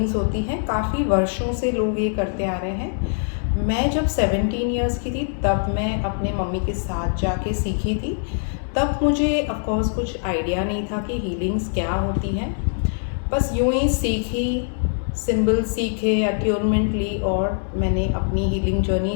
होती हैं, काफ़ी वर्षों से लोग ये करते आ रहे हैं। मैं जब 17 ईयर्स की थी तब मैं अपने मम्मी के साथ जाके सीखी थी। तब मुझे ऑफकोर्स कुछ आइडिया नहीं था कि हीलिंग्स क्या होती हैं। बस यूं ही सीखी, सिंबल सीखे, अट्यूनमेंट ली और मैंने अपनी हीलिंग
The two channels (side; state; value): right; silent; 64 dB below the other